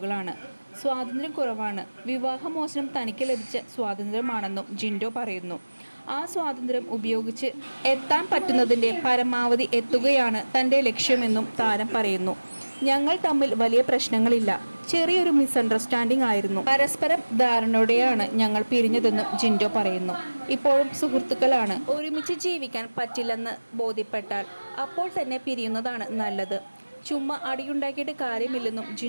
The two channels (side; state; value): both; inverted; correlation -1.00